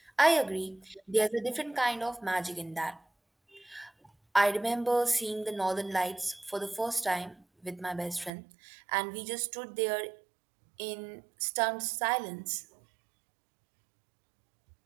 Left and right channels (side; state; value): left; drops out; at 8.3 s